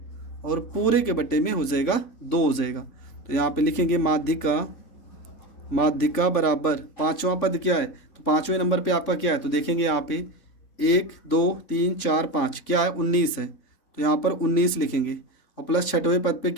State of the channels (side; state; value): right; late; 3.5 ms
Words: और पूरे के बटे में हो जाएगा 2 हो जाएगा। तो यहाँ पे लिखेंगे माध्यिका बराबर 5वां पद क्या है? तो 5वें नंबर पे आपका क्या है? तो देखेंगे यहाँ पे 1 2 3 4 5 क्या है? 19 है। तो यहाँ पर 19 लिखेंगे, और प्लस 6वें पद पे